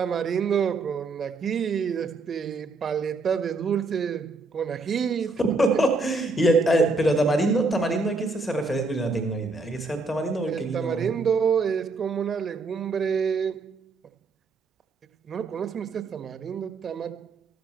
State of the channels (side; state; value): left; quieter; 3.6 dB